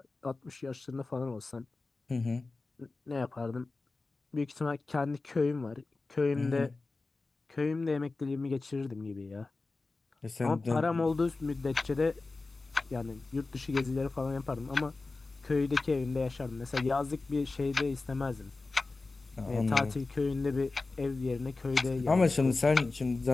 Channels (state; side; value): quieter; right; 3.6 dB